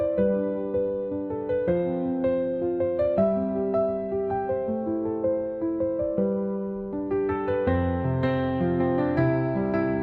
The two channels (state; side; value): identical; both; correlation 1.00